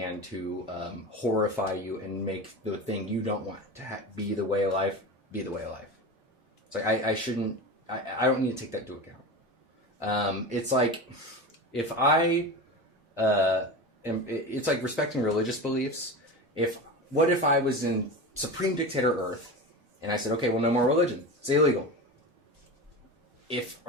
to horrify you and make the thing you don't want to be the way of life be the way of life. It's like I shouldn't. I don't need to take that into account. It's like if it's like respecting religious beliefs. What if I was in supreme dictator Earth and I said, okay, well, no more religion. It's illegal. If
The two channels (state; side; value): normal; both; correlation 0.27